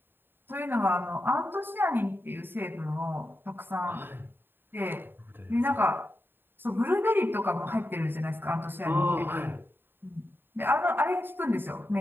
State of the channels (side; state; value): left; late; 0.097 ms